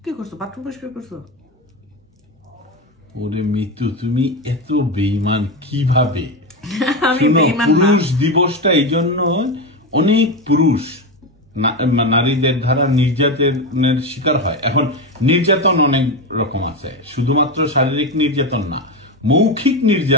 কি করছো? বাথরুম পরিষ্কার করছো? ওরে মিতু, তুমি এত বেঈমান কিভাবে? আমি বেঈমান না। পুরুষ দিবসটা এই জন্য অনেক পুরুষ নারীদের দ্বারা নির্যাতনের শিকার হয়। এখন নির্যাতন অনেক রকম আছে, শুধুমাত্র শারীরিক নির্যাতন না, মৌখিক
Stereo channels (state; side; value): normal; both; correlation 0.15